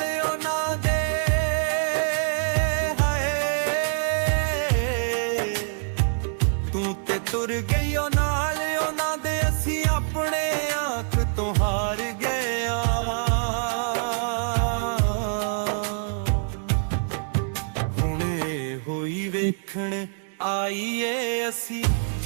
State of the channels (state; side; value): silent; left; digital silence